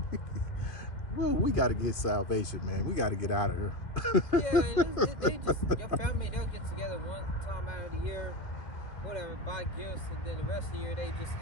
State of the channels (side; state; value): right; late; 1.8 ms